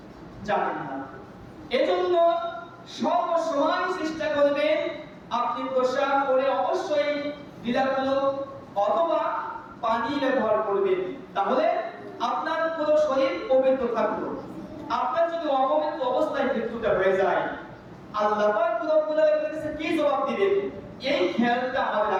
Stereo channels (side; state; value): both; identical; correlation 1.00